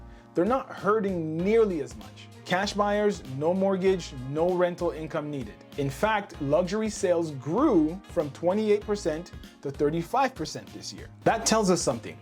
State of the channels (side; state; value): both; identical; correlation 1.00